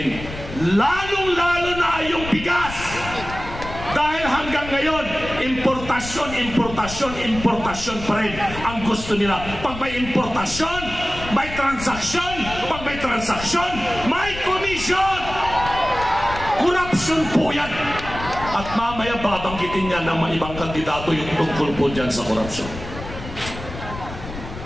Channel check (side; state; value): left; noise; rumble, 11 dB below the sound